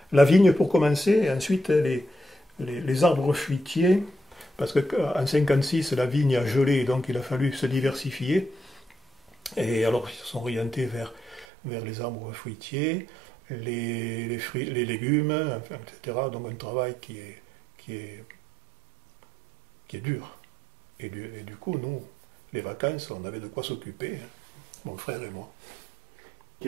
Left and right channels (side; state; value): left; drops out; at 11.5 s